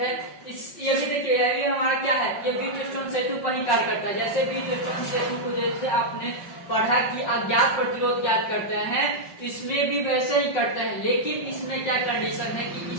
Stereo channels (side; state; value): right; late; 5.4 ms